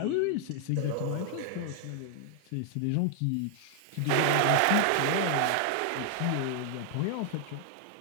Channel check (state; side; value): different; both; correlation 0.00